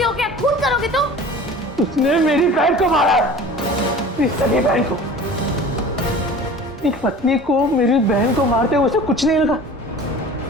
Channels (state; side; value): normal; both; correlation 0.41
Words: हो क्या? खून करोगे तुम? उसने मेरी बहन को मारा, मेरी सगी बहन को। एक पत्नी को मेरी बहन को मारते हुए उसे कुछ नहीं लगा।